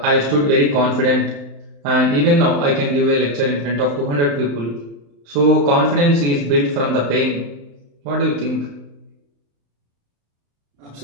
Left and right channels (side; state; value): left; late; 35 ms